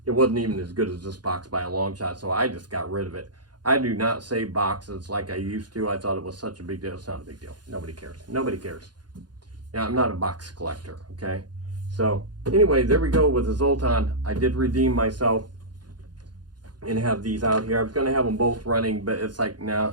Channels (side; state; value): left; late; 0.70 ms